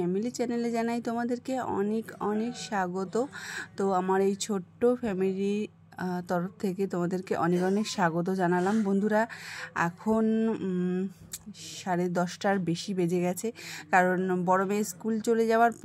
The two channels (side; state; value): both; identical; correlation 1.00